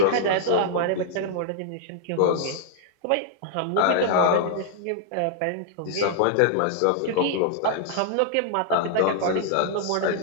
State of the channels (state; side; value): different; both; correlation -0.01